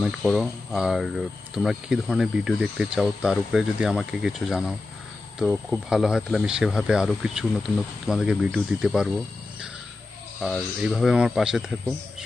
করো। আর তোমরা কী ধরনের ভিডিও দেখতে চাও তার উপরে যদি আমাকে কিছু জানাও তো খুব ভালো হয়, তাহলে আমি সেভাবে আরও কিছু নতুন নতুন তোমাদেরকে ভিডিও দিতে পারবো। আর এইভাবে আমার পাশে থেকো,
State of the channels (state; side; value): quieter; right; 3.3 dB